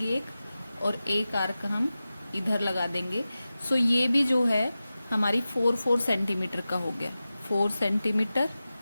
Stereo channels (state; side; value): inverted; both; correlation -0.95